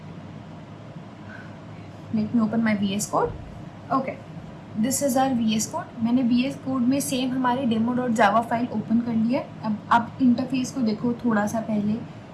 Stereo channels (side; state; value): both; identical; correlation 1.00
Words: let me open my VS code. Okay, this is our VS code. मैंने VS कोड में सेम हमारी demo.java फाइल ओपन कर ली है। अब आप इंटरफेस को देखो थोड़ा सा पहले